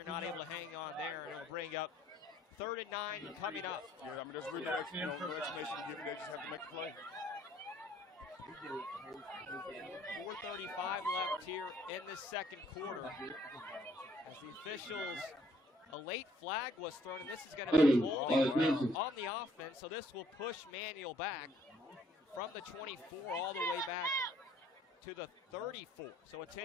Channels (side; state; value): both; normal; correlation 0.63